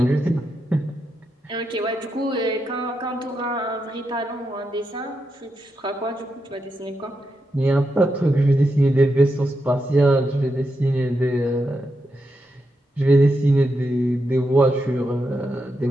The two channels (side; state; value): both; normal; correlation 0.85